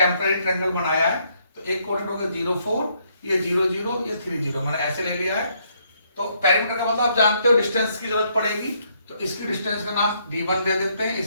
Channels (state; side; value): inverted; both; correlation -0.72